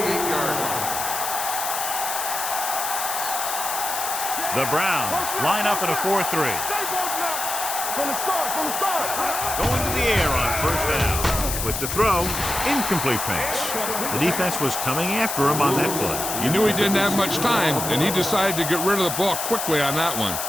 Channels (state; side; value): noise; left; hiss, 3 dB below the sound